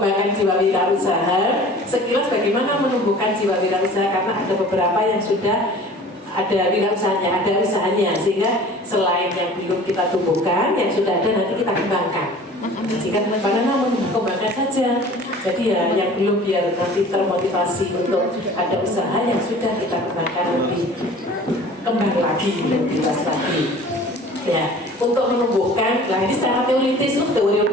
jiwa wirausaha. Sekilas bagaimana menumbuhkan jiwa wirausaha, karena ada beberapa yang sudah ada wirausahanya, ada usahanya, sehingga selain yang belum kita tumbuhkan, yang sudah ada nanti kita kembangkan. sehingga karena kembangkan saja. Jadi ya yang belum biar nanti termotivasi untuk ada usaha yang sudah kita kembangkan lebih kembang lagi, lebih luas lagi. Ya, untuk menumbuhkan, nah ini secara teoritis itu teori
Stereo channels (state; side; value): normal; both; correlation 0.45